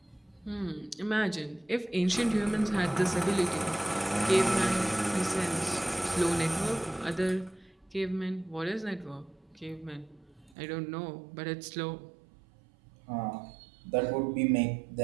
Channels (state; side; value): drops out; left; at 10.6 s